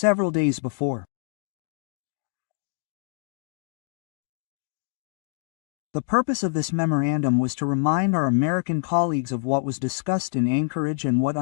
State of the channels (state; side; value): silent; right; digital silence